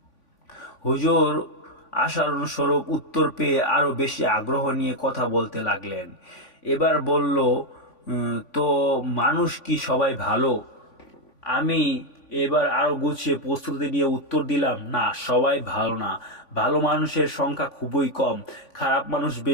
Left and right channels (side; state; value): right; late; 3.5 ms